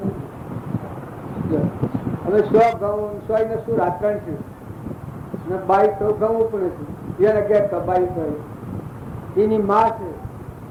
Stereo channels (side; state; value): both; identical; correlation 1.00